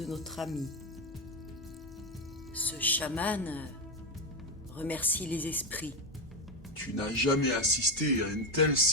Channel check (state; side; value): normal; both; correlation 0.09